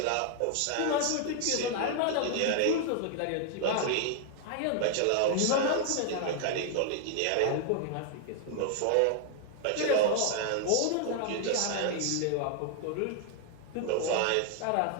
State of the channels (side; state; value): both; different; correlation 0.00